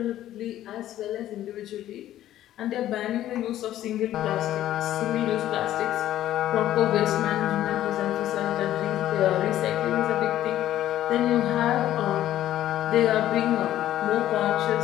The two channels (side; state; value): right; quieter; 13.0 dB